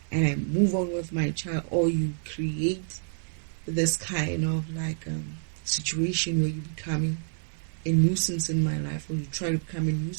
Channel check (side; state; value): left; silent; digital silence